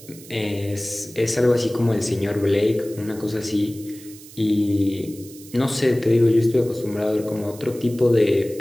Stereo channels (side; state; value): right; noise; hiss, 19 dB below the sound